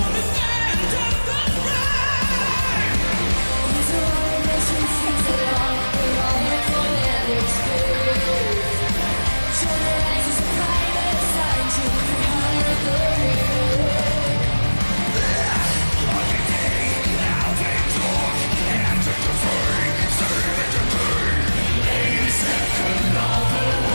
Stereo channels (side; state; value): both; inverted; correlation -1.00